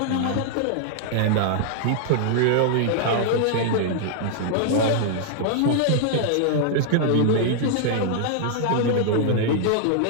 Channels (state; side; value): different; both; correlation -0.01